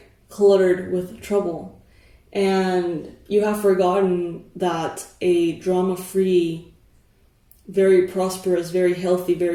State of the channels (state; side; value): identical; both; correlation 1.00